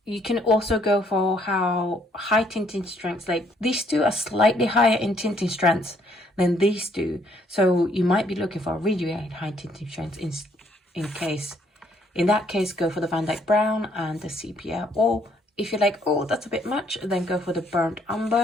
you can also go for how high tinting strengths, like these two are slightly higher in tinting strengths than these two. So you might be looking for a really high tinting strength in that case, go for the Van Dyke Brown and the Sepia. Or if you're like, oh, that's a bit much, then go for the Burnt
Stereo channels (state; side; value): normal; both; correlation 0.67